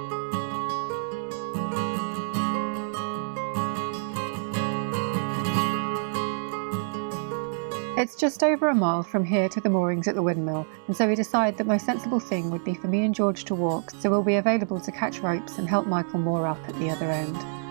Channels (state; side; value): silent; left; digital silence